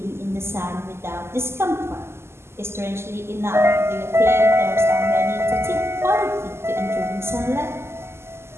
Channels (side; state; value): left; late; 0.12 ms